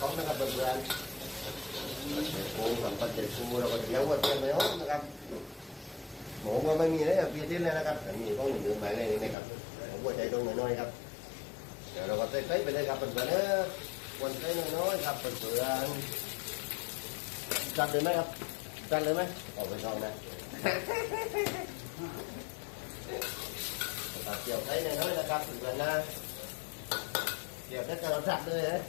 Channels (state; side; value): drops out; right; at 9.3 s